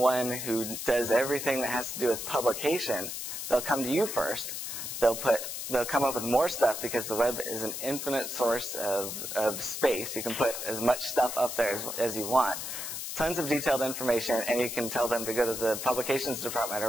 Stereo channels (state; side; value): noise; left; hiss, 6 dB below the sound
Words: who does everything that has to do with publication, they'll come to you first. They'll come up with more stuff because the web is an infinite source of space. You can put as much stuff up there as you want. Tons of detailed information, and you can tell them to go to the publications department